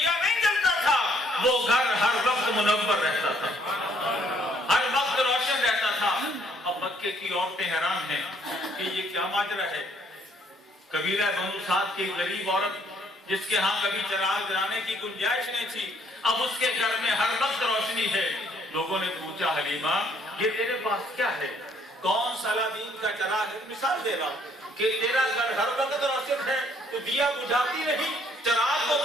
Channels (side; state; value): both; normal; correlation 0.66